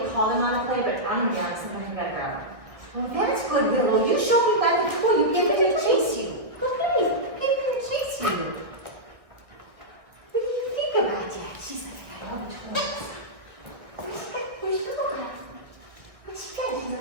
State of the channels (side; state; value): left; late; 1.7 ms